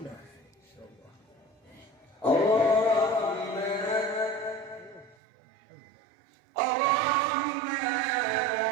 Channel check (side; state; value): left; drops out; at 5.2 s